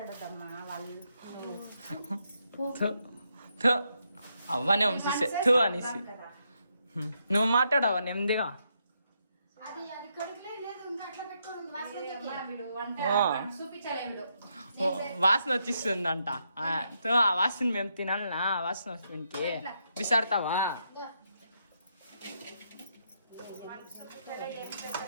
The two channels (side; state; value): both; inverted; correlation -0.79